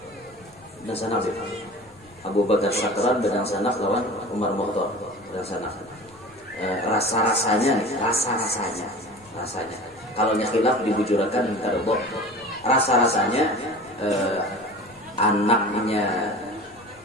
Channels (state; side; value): noise; left; rumble, 28 dB below the sound